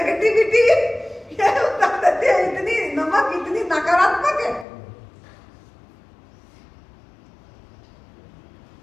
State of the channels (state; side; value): drops out; right; at 4.7 s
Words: ये उतार देती है, इतनी नमक इतनी नकारात्मक है।